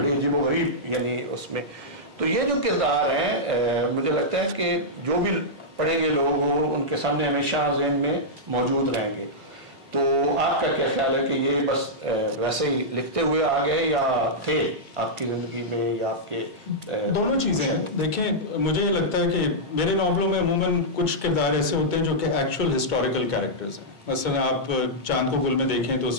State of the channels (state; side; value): normal; both; correlation -0.10